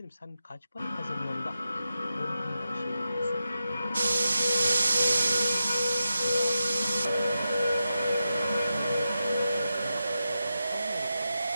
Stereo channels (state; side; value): inverted; both; correlation -0.90